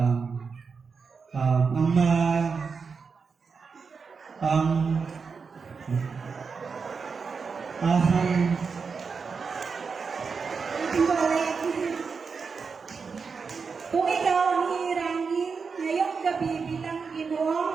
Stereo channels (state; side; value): quieter; left; 5.3 dB